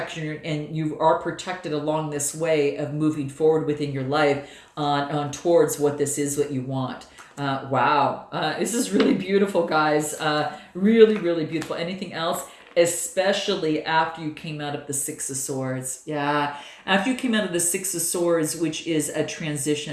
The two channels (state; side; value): identical; both; correlation 1.00